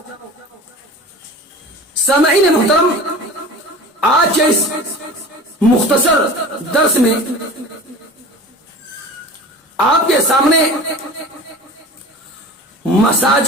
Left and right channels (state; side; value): normal; both; correlation 0.38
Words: سامعین محترم، آج کے اس مختصر درس میں آپ کے سامنے